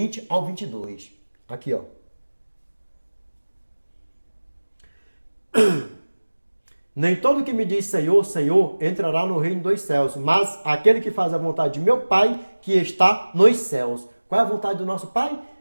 ao 22. Aqui, ó. Nem todo que me diz Senhor, Senhor, entrará no reino dos céus, mas aquele que faz a vontade de meu Pai, que está nos céus. Qual é a vontade do nosso Pai?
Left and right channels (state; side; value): inverted; both; correlation -1.00